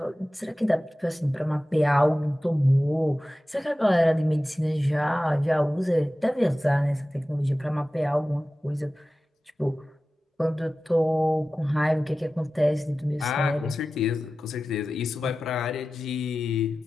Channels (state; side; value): normal; both; correlation 0.95